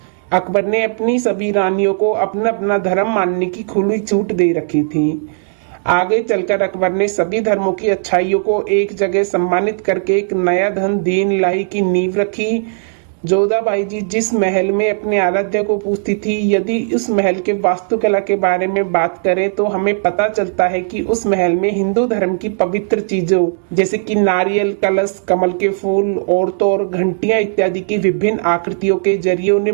अकबर ने अपनी सभी रानियों को अपना अपना धर्म मानने की खुली छूट दे रखी थी। आगे चलकर अकबर ने सभी धर्मों की अच्छाइयों को एक जगह सम्मानित करके एक नया धन दीन इलाही की नींव रखी। जोधाबाई जी जिस महल में अपने आराध्य को पूजती थी, यदि उस महल के वास्तुकला के बारे में बात करें तो हमें पता चलता है कि उस महल में हिंदू धर्म की पवित्र चीजों जैसे कि नारियल, कलश, कमल के फूल, औरतों और घंटियां इत्यादि की विभिन्न आकृतियों के जरिए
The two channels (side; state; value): left; silent; digital silence